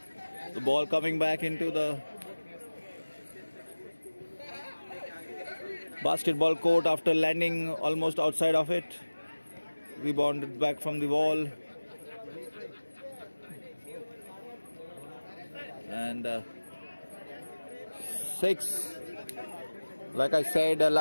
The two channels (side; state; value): both; inverted; correlation -1.00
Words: The ball coming back into the basketball court after landing almost outside of it. Rebounded back from the wall. And 6. Like I said,